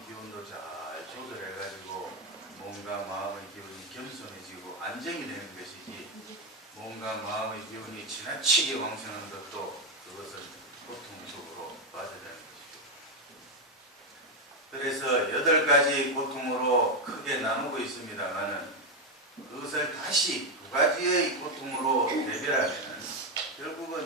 기운도 잘 조절해가지고 몸과 마음의 기운이 겸손해지고 안정이 되는 것이지 몸과 마음의 기운이 지나치게 왕성한 것도 그것은 고통 속으로 빠져드는 것이죠. 그래서 8가지 고통으로 크게 나누고 있습니다만은 그것을 다시 2가지의 고통으로 대별하면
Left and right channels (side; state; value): both; normal; correlation 0.07